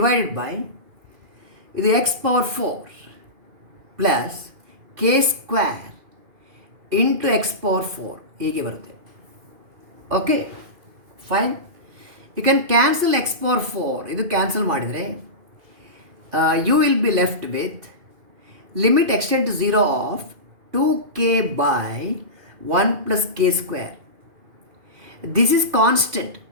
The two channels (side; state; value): left; late; 2.5 ms